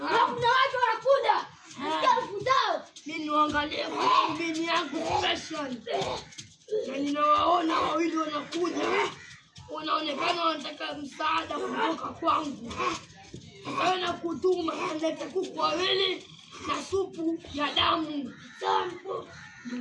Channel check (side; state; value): both; identical; correlation 1.00